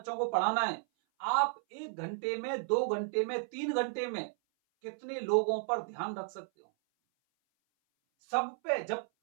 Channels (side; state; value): left; silent; 55 dB below the other